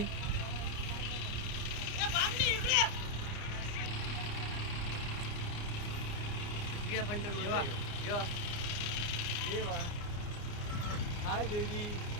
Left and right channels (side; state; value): right; late; 29 ms